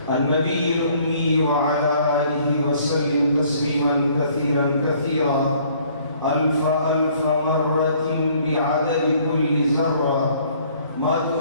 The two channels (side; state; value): both; inverted; correlation -0.60